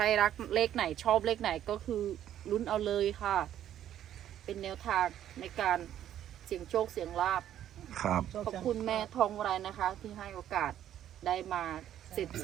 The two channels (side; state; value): left; quieter; 11.2 dB